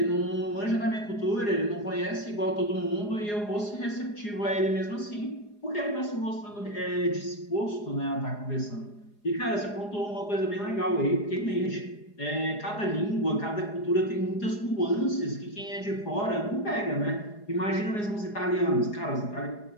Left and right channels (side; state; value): right; late; 4.8 ms